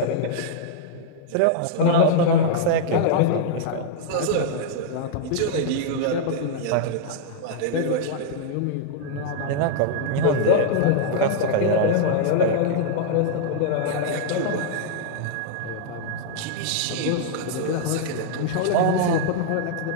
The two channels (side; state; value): both; different; correlation -0.01